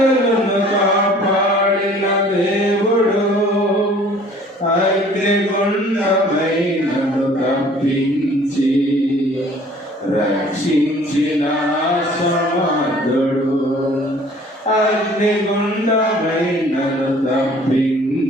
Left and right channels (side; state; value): both; normal; correlation 0.53